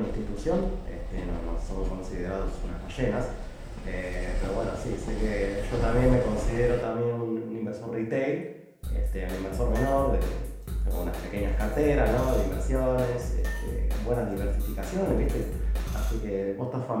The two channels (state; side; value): identical; both; correlation 1.00